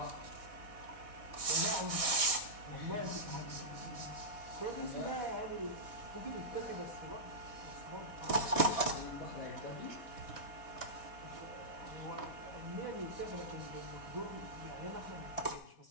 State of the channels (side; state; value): right; late; 4.1 ms